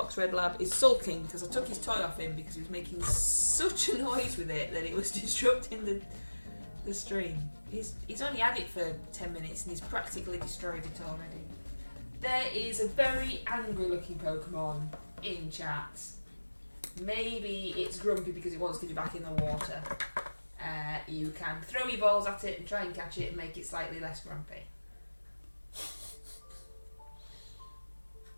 Red Lab, is sulking because I took his toy off him because he was making such a noise with it that it was disrupting the stream. He's only had it for 10 minutes and he's practically destroyed it already. There is a very angry looking Pokemon in chat. Maybe it's grumpy because it wants to be back in the water. You can throw your balls at it and try and catch it and make it slightly less grumpy.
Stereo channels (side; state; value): both; inverted; correlation -1.00